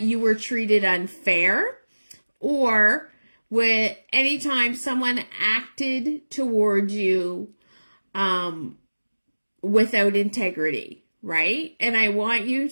were treated unfair or with any time someone acted towards you without integrity, right? And I want you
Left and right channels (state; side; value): inverted; both; correlation -1.00